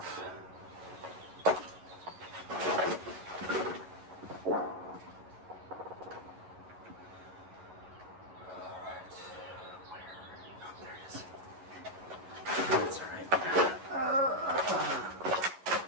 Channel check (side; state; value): left; late; 11 ms